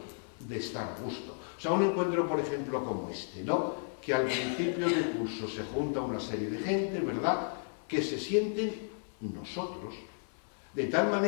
de estar a gusto. O sea, un encuentro, por ejemplo, como este, ¿no? Que al principio del curso se junta una serie de gente, ¿verdad?, que se sienten nosotros, de tal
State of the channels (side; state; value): right; silent; 55 dB below the other